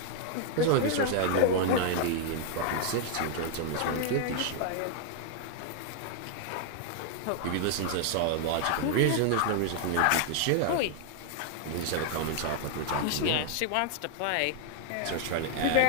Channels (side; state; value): both; different; correlation 0.00